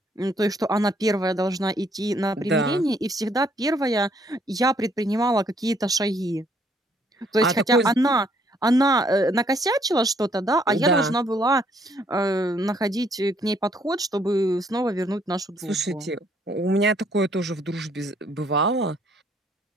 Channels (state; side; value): normal; both; correlation 0.66